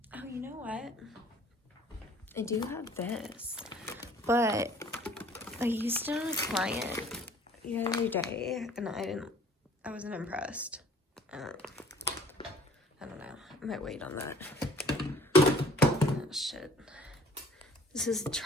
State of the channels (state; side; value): normal; both; correlation 0.53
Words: you know what? I do have this, but I used it on a client the other day, and I wasn't impressed. I don't know. I might wait on that. Oh, shit. This is a